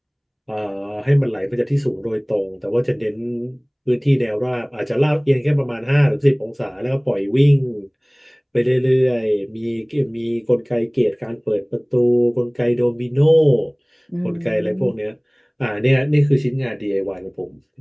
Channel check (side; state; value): both; identical; correlation 1.00